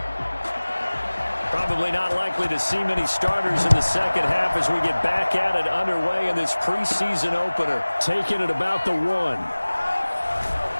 Probably not likely to see many starters in the second half as we get back at it underway in this preseason opener. Taking it about the 1.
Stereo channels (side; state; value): both; inverted; correlation -1.00